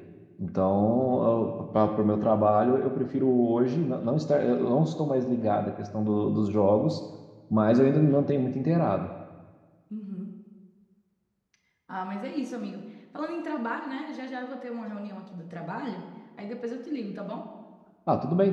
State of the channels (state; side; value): identical; both; correlation 1.00